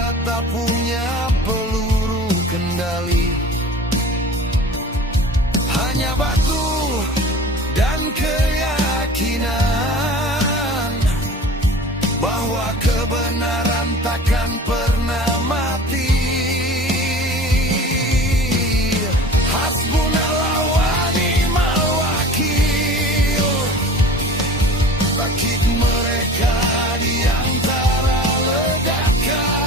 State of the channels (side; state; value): both; normal; correlation 0.40